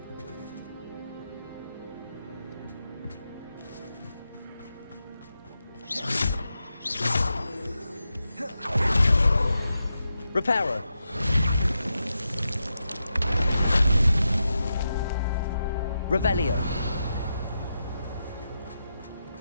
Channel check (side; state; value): both; inverted; correlation -0.87